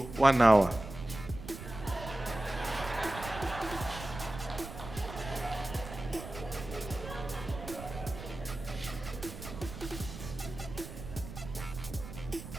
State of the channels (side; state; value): right; noise; rumble, 11 dB below the sound